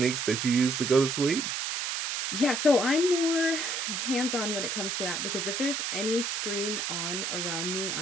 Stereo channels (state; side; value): noise; right; hiss, 2 dB below the sound